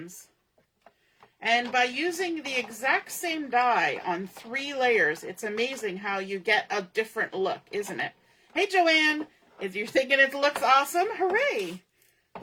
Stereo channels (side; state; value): both; identical; correlation 1.00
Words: And by using the exact same die on 3 layers, it's amazing how you get a different look, isn't it? Hey, Joanne, if you're thinking it looks awesome, hooray!